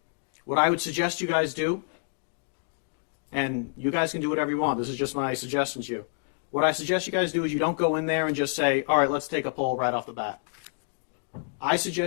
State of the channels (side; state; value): right; silent; digital silence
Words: What I would suggest you guys do, and you guys can do whatever you want, this is just my suggestion to you. What I suggest you guys do is you don't go in there and just say, all right, let's take a poll right off the bat. I